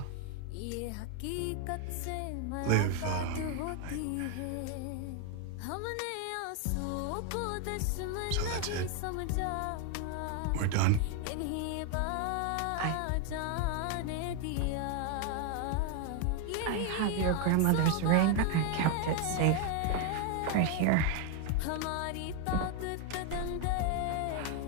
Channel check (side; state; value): both; different; correlation 0.01